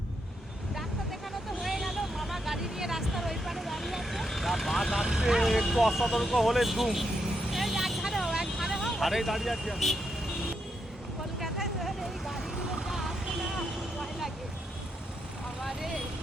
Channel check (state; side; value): normal; both; correlation 0.81